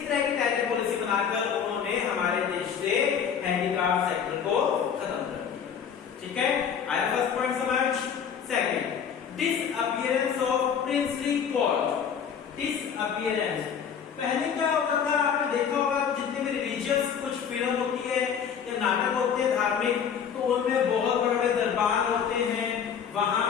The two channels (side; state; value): right; quieter; 7.6 dB